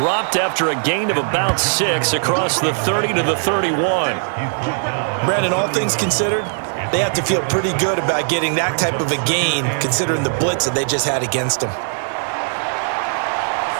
after a gain of about 6 across the 30 to the 31. Brandon, all things considered, they have to feel pretty good about getting that type of a gain considering the blitz that they just had against them.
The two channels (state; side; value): silent; left; digital silence